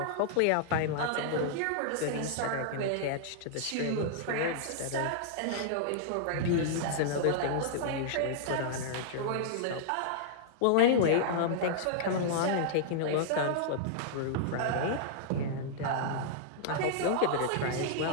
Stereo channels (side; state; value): both; different; correlation -0.01